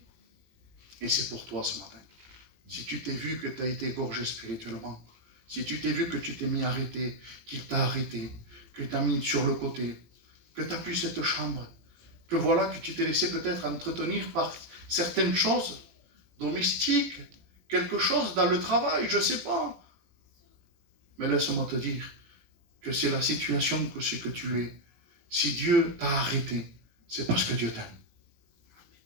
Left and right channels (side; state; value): left; late; 18 ms